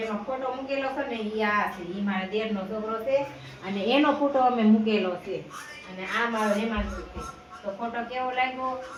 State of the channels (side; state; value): both; identical; correlation 1.00